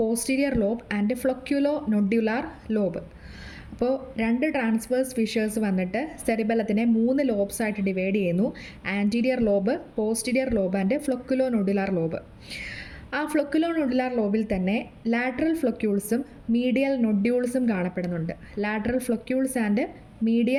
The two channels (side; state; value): both; identical; correlation 1.00